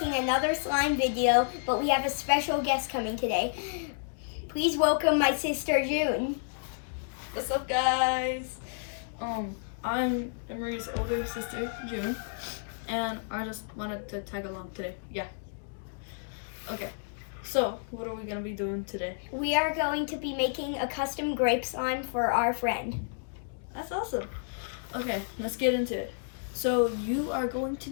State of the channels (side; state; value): right; silent; digital silence